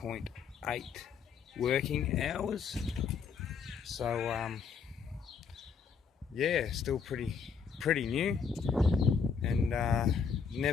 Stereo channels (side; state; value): right; quieter; 6.1 dB